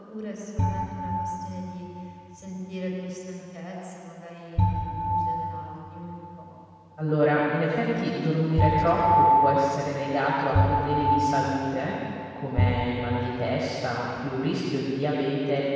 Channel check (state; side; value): identical; both; correlation 1.00